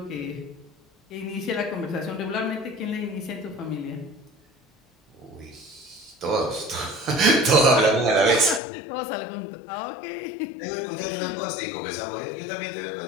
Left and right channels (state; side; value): drops out; right; at 8.6 s